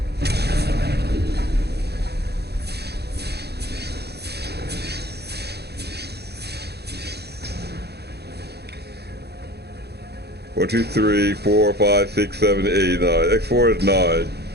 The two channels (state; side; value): late; left; 0.48 ms